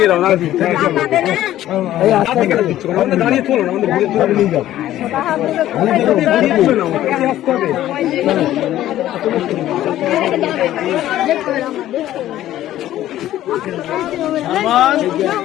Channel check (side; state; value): right; quieter; 13.4 dB